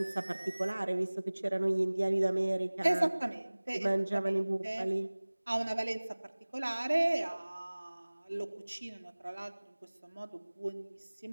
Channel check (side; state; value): both; inverted; correlation -1.00